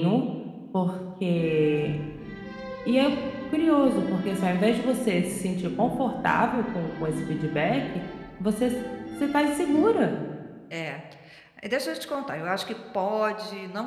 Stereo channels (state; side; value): identical; both; correlation 1.00